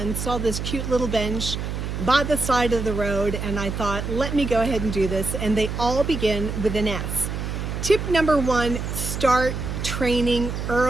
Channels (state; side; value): noise; right; hum, 4 dB below the sound